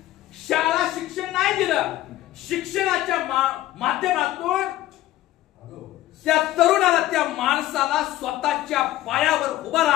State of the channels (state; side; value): quieter; right; 14.9 dB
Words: शाळा शिक्षण नाही दिलं, शिक्षणाच्या माध्यमातून त्या तरुणाला, त्या माणसाला स्वतःच्या पायावर उभा